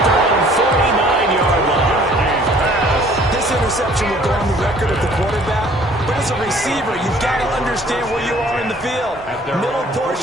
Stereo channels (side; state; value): both; normal; correlation 0.55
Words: their own 49-yard line. This interception will go on the record of the quarterback, but as a receiver, you've got to understand where you are in the field. Middle